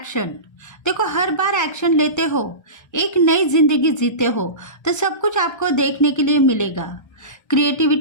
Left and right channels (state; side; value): late; right; 1.3 ms